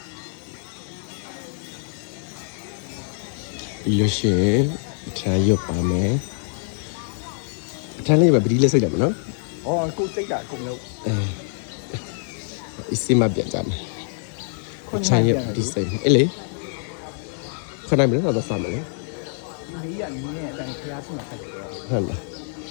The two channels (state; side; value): silent; right; digital silence